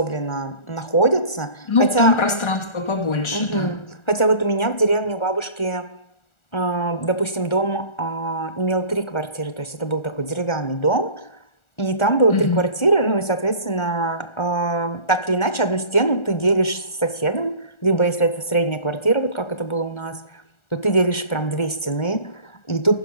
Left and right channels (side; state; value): right; late; 1.4 ms